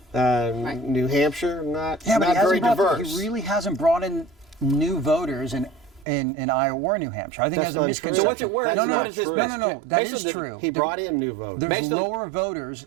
New Hampshire, not very diverse. He really hasn't brought in new voters in Iowa or New Hampshire. I think That's that's a not misconception. true. So what's it worth? That's No, not no, true. no. That Based is on the- true. He brought in new voters. There's Based on- lower voters.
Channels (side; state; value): left; drops out; at 6.1 s